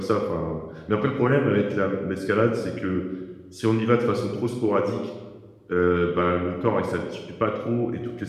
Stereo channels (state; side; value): identical; both; correlation 1.00